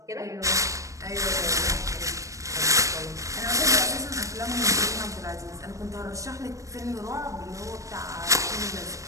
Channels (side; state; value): left; late; 0.16 ms